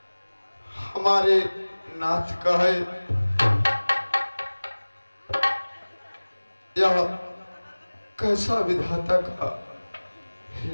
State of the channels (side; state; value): both; inverted; correlation -1.00